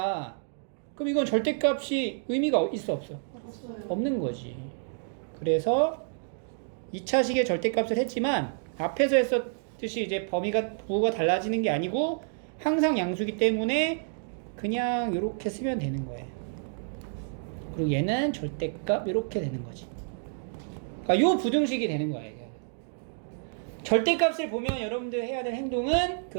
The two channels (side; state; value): left; silent; digital silence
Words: 그럼 이건 절대값이 의미가 있어 없어? 없는 거지. 그래서 2차식의 절대값을 했지만 앞에서 했었듯이 이제 부호가 달라지는 게 아니고 항상 양수기 때문에 그냥 이렇게 쓰면 되는 거예요. 그리고 얘는 절대값 이렇게 되는 거지. 그러니까 요 부등식이 되는 거예요. 절대값을 보면 여러분들 해야 될 행동은